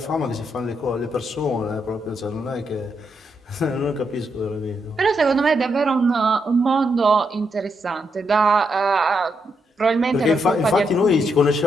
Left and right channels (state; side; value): normal; both; correlation 0.80